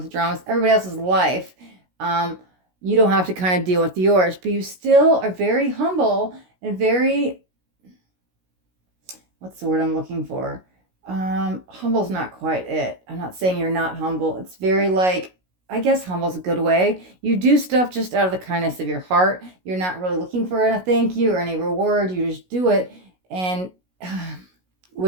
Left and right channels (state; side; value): late; left; 16 ms